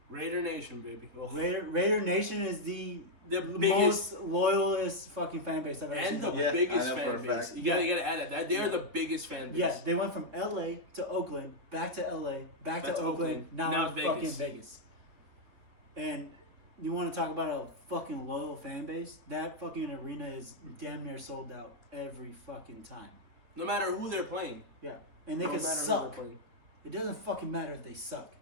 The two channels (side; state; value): left; late; 4.0 ms